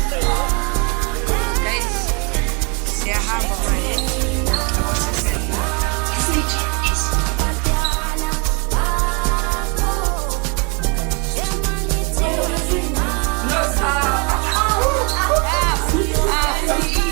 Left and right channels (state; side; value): quieter; left; 33.0 dB